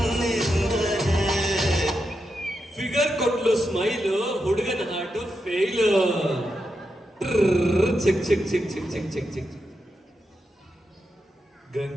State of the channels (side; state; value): both; normal; correlation 0.86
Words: ಫಿಗರ್ ಕೊಟ್ಲು ಸ್ಮೈಲ್ ಹುಡುಗನ ಹಾಟು ಫೇಲ್ ಚಿಕ್ ಚಿಕ್ ಚಿಕ್ ಚಿಕ್ ಚಿಕ್ ಚಿಕ್ ಚಿಕ್